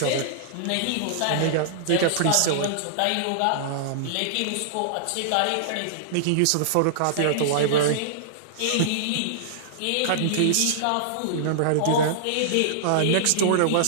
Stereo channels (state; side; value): different; both; correlation -0.02